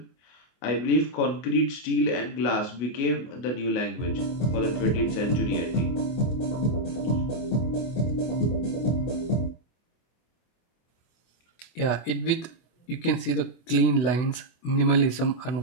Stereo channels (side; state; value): right; late; 24 ms